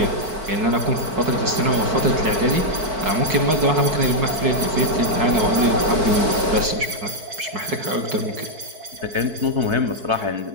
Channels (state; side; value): late; left; 4.6 ms